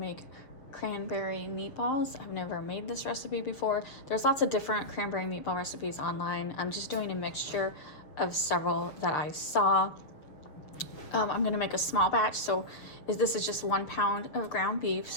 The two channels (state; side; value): late; right; 6.8 ms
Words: cranberry meatballs. I've never made this recipe before. There's lots of different cranberry meatball recipes online. I'm just doing a mixture of several that I saw. I'm gonna make a small batch, so this is just 1 pound of ground beef.